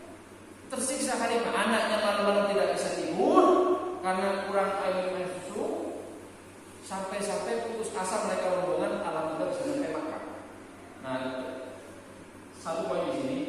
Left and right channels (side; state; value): both; identical; correlation 1.00